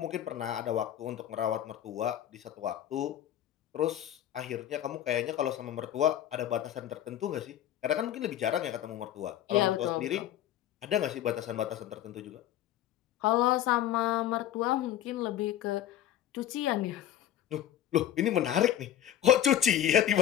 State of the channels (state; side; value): quieter; right; 11.6 dB